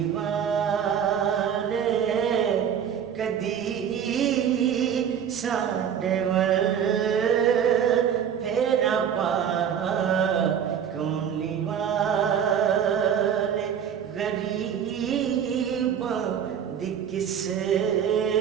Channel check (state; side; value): quieter; left; 8.4 dB